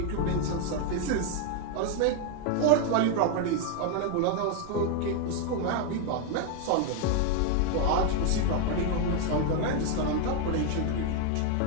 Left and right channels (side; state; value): both; different; correlation 0.01